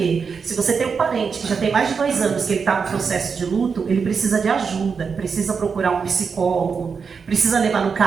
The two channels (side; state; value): left; quieter; 5.7 dB